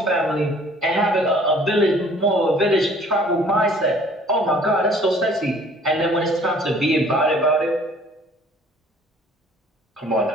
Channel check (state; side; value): normal; both; correlation 0.54